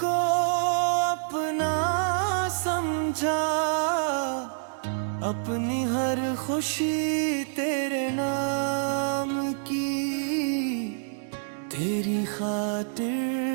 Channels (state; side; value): silent; left; digital silence